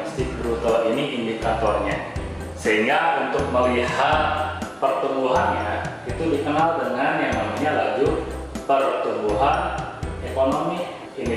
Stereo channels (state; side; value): identical; both; correlation 1.00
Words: bruto ini indikatornya. Sehingga untuk melihat pertumbuhannya itu dikenal dengan yang namanya laju pertumbuhan ekonomi.